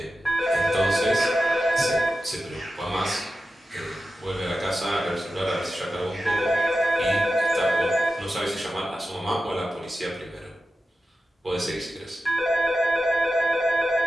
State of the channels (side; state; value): both; normal; correlation 0.92